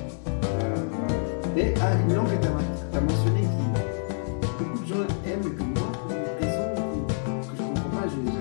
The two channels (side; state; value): right; silent; digital silence